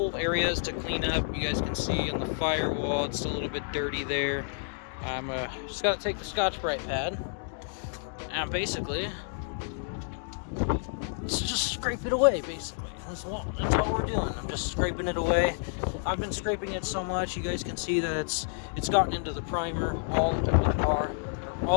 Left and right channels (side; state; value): right; silent; digital silence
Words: areas to clean up. You guys can see on the firewall, it's still a little bit dirty there. I'm just got to take the Scotch-Brite pad and basically just scrape it away. Basically, that's all we're doing. I'm just scraping it away. I've been scraping it so much, you guys can see that it's gotten into the primer all over the car, or